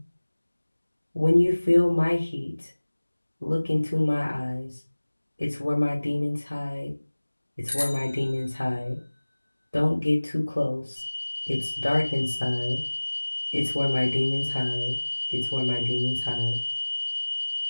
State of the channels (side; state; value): both; inverted; correlation -1.00